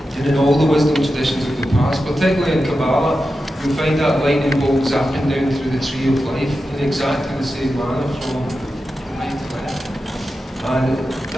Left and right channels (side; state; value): both; normal; correlation 0.91